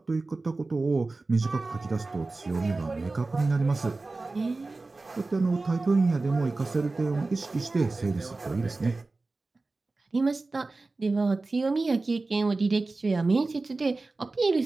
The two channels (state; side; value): quieter; left; 3.4 dB